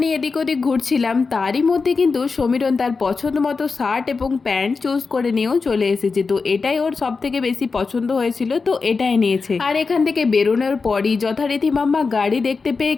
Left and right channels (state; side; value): quieter; right; 4.6 dB